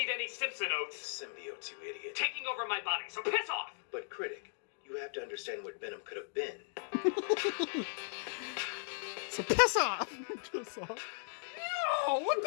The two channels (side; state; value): right; silent; digital silence